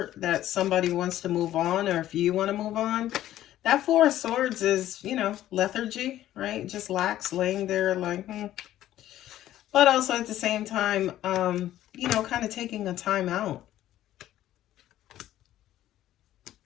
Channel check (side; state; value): right; quieter; 13.2 dB